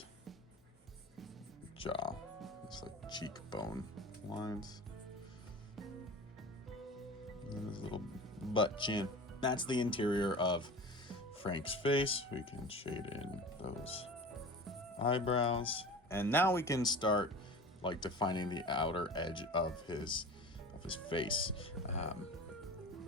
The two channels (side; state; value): both; normal; correlation 0.35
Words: jaw. It's like cheekbone lines. And then his little butt chin. That's the interior of Frank's face. We can shade in those eyebrows. And now we can start like defining the outer edge of his face.